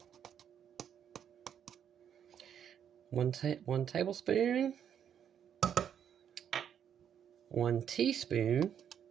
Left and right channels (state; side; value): quieter; left; 8.8 dB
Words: One tablespoon, 1 teaspoon,